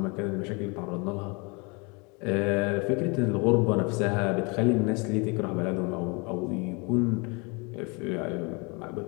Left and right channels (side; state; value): right; quieter; 30.3 dB